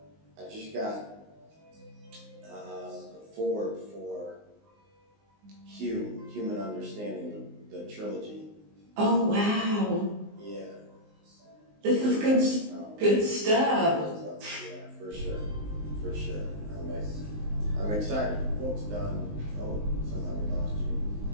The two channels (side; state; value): left; late; 19 ms